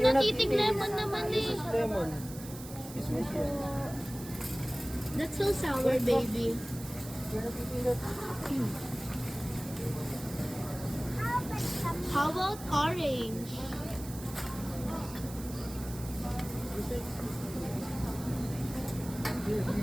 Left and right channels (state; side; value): noise; right; hiss, 14 dB below the sound